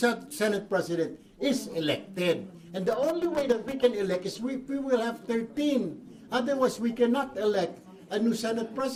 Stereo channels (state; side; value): identical; both; correlation 1.00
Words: President is elected. And the only way that we can elect is we will have 13. Otherwise, we cannot elect a new Senate